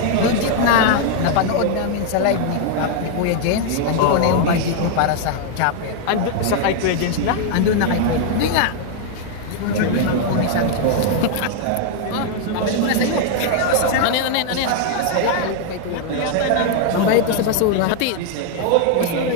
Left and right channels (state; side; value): different; both; correlation 0.00